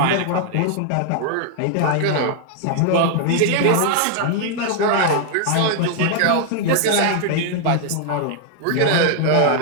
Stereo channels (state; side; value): different; both; correlation 0.00